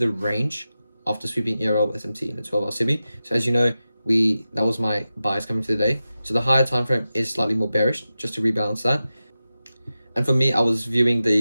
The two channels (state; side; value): inverted; both; correlation -0.93